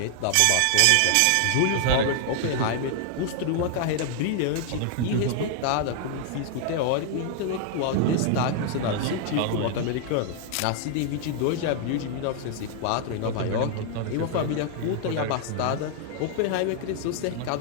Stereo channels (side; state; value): both; different; correlation 0.00